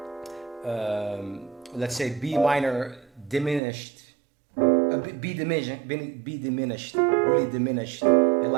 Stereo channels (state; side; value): drops out; left; at 3.6 s